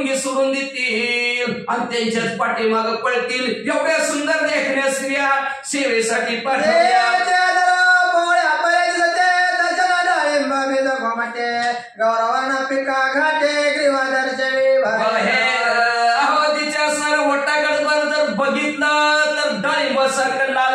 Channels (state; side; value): identical; both; correlation 1.00